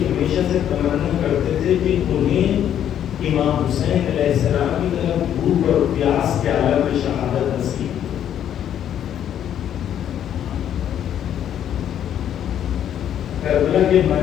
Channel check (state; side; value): quieter; right; 10.1 dB